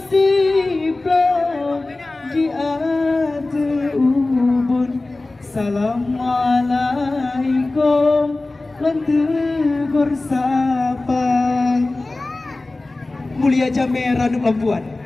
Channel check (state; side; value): quieter; right; 3.1 dB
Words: siplo di atuh ubun. Assalamualaikum lan tegur sapa. Mulia Jame Ranum Lampuan,